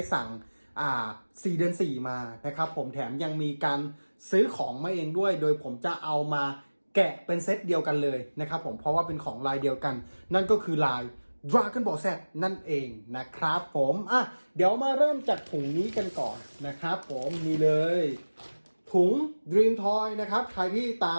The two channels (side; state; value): both; inverted; correlation -1.00